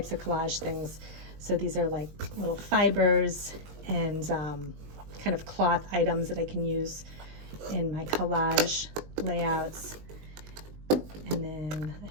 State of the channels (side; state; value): left; late; 20 ms